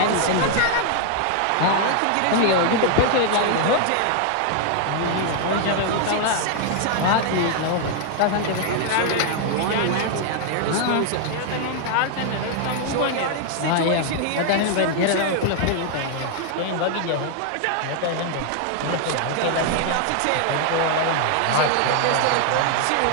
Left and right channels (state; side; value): different; both; correlation 0.00